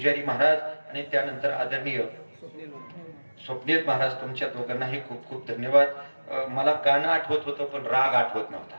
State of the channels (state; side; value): inverted; both; correlation -1.00